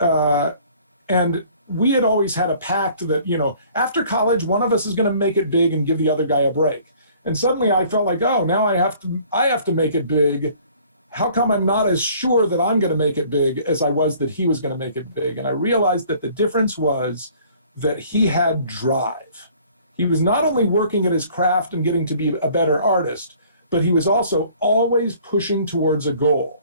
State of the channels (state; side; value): inverted; both; correlation -0.55